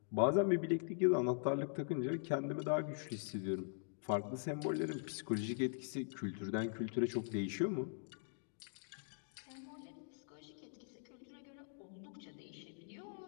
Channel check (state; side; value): silent; right; digital silence